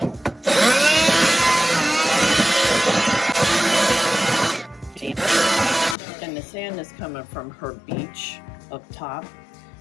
And the sand is coming from her beach up top.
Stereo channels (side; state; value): right; drops out; at 6.0 s